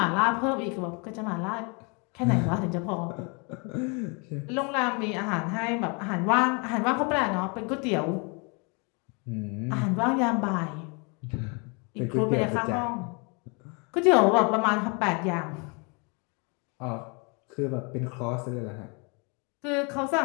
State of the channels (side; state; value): right; quieter; 32.8 dB